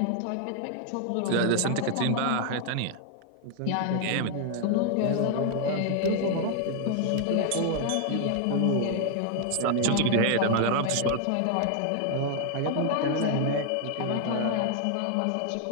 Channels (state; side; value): different; both; correlation 0.00